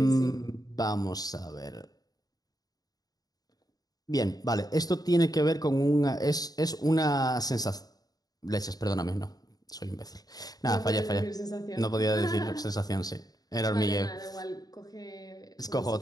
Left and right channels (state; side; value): late; right; 0.18 ms